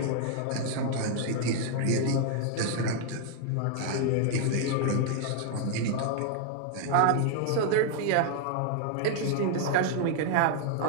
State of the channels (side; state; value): both; different; correlation 0.00